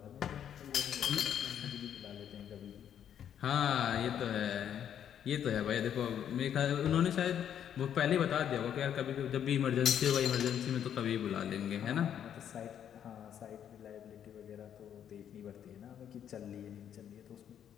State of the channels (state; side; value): quieter; right; 9.4 dB